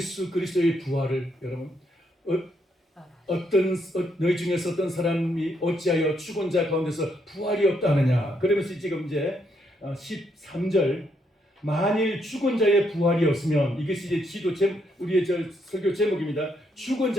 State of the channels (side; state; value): both; normal; correlation 0.75